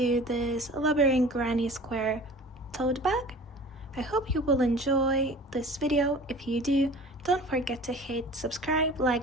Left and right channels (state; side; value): normal; both; correlation 0.42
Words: this labyrinth granny square tote bag. I hope you will enjoy this video. If you do, don't forget to hit subscribe,